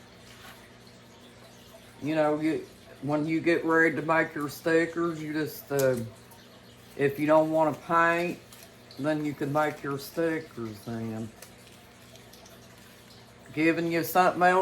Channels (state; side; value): identical; both; correlation 1.00